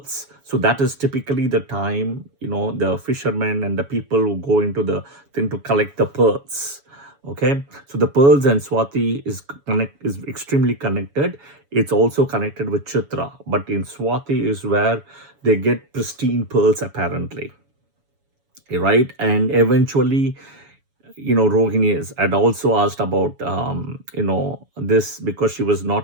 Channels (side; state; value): left; late; 7.1 ms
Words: So that is typically the time, the fishermen and the people who go into the thing to collect the pearls. Okay, so the pearls and Swati is extremely connected. It's also connected with Chitra, but in Swati is where they get pristine pearls apparently, right? And eventually, Rohini had also asked about, this, because she was